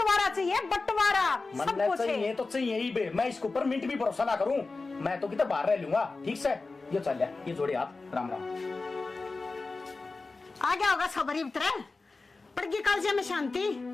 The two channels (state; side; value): quieter; right; 3.7 dB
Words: चाहिए बंटवारा, सब कुछ चाहिए तो चाहिए ही बे, मैं इसके ऊपर मिनट भी भरोसा ना करूं, मैं तो कितना बाहर रह लूंगा। ठीक से ये चल लिया, ये जोड़े हाथ, राम राम। आ गया होगा सबरी उतरे पड़गी काल से में शांति।